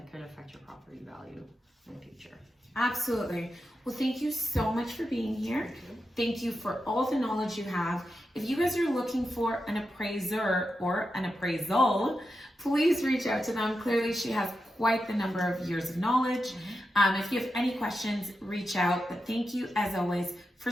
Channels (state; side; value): normal; both; correlation 0.89